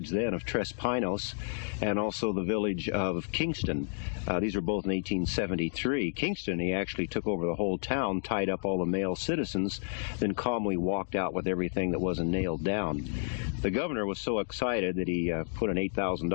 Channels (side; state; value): right; silent; digital silence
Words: then, of Tres Pinos, and also the village of Kingston. These were both in 1873. Kingston, he actually took over the whole town, tied up all the male citizens, then calmly walked out with everything that wasn't nailed down. The governor was so excited that he put an